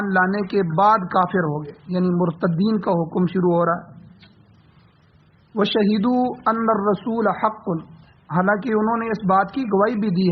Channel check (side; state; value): both; identical; correlation 1.00